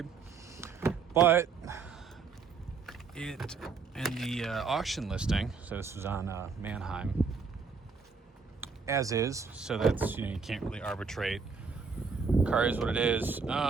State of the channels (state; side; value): quieter; left; 5.1 dB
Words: But it in the auction listing, so this was on Mannheim, as is, so that's, you can't really arbitrate. Car is what it is.